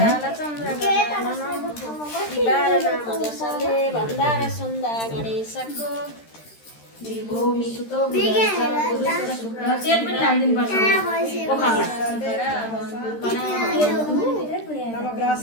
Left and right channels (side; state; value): right; late; 13 ms